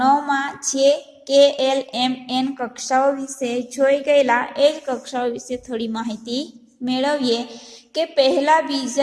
9માં છે KLMN કક્ષાઓ વિશે જોઈ ગયેલા. એ જ કક્ષાઓ વિશે થોડી માહિતી મેળવીએ કે પહેલા,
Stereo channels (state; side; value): identical; both; correlation 1.00